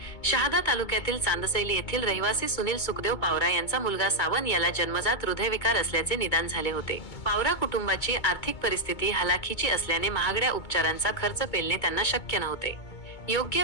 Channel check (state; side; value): late; right; 2.2 ms